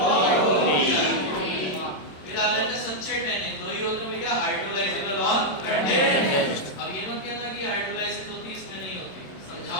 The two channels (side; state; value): right; late; 27 ms